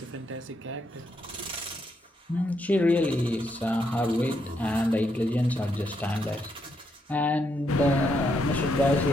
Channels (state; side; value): normal; both; correlation 0.78